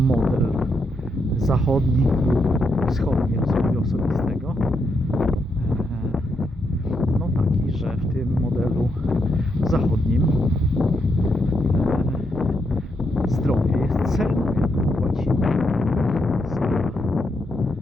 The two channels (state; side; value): normal; both; correlation 0.80